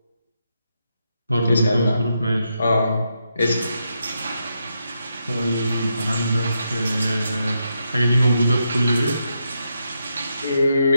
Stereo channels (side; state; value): both; inverted; correlation -0.82